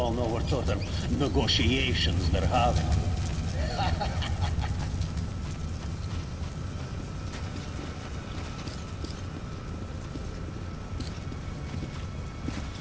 know what sort of negotiations they're having.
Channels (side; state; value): both; identical; correlation 1.00